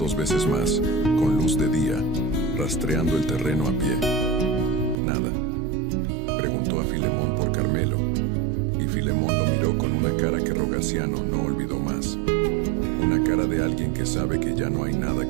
veces más, con luz de día, rastreando el terreno a pie. Nada. Preguntó a Filemón por Carmelo, y Filemón lo miró con una cara que Rogaciano no olvidó más. Una cara de alguien que sabe que ya no hay nada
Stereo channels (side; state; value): left; drops out; at 5.0 s